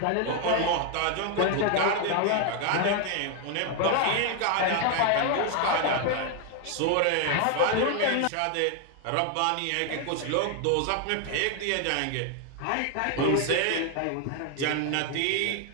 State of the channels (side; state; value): both; different; correlation 0.01